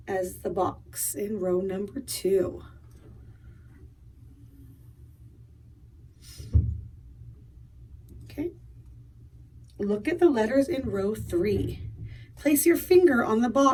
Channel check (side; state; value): both; identical; correlation 1.00